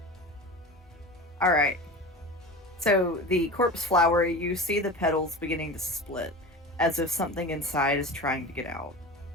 All right. So the corpse flower, you see the petals beginning to split, as if something inside is trying to get out.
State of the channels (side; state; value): both; normal; correlation 0.31